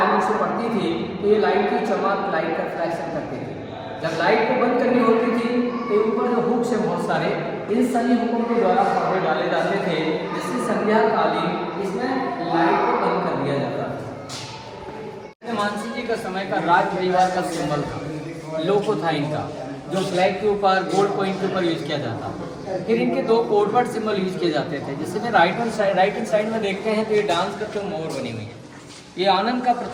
से पड़ती थी तो ये लाइट की चमक, लाइट का रिफ्लेक्शन करती थी। जब लाइट को बंद करनी होती थी तो ऊपर जो हुक्स है बहुत सारे, इन सभी हुकों के द्वारा पर्दे डाले जाते थे जिससे संध्या कालीन इसमें लाइट को बंद कर दिया जाता था। मानसिंह जी का समय का राज परिवार का सिंबल था, लोगो था इनका, जो ब्लैक के ऊपर गोल्ड कॉइन के ऊपर यूज किया जाता। फिर इनके 2 कोडवर्ड सिंबल यूज किए जाते थे। जिससे में राइट हैंड साइड में देखते हैं तो ये डांस करते हुए मोर बनी हुई है। ये आनंद का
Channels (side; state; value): both; identical; correlation 1.00